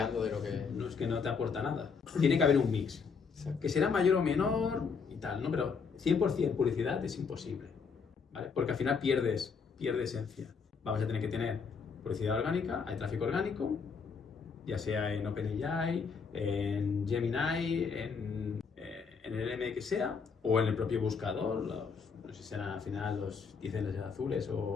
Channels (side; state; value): right; quieter; 5.5 dB